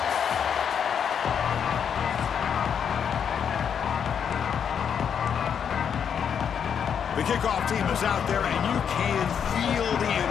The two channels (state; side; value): quieter; right; 7.7 dB